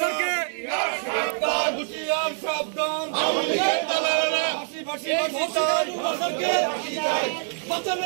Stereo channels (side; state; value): left; silent; 62 dB below the other